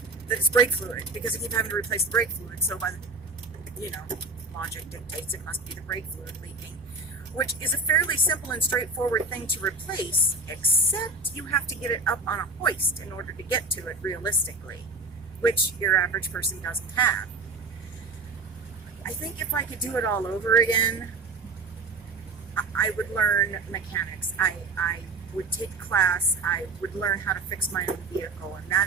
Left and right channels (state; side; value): quieter; left; 3.6 dB